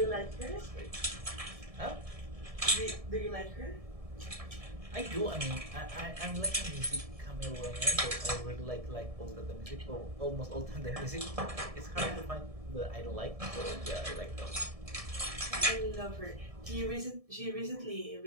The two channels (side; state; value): left; late; 1.7 ms